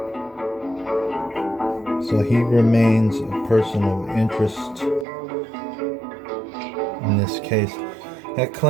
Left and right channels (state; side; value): drops out; left; at 5.1 s